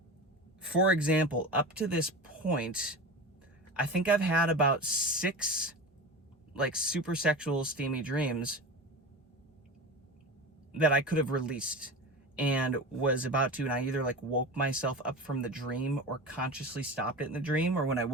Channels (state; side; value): normal; both; correlation 0.29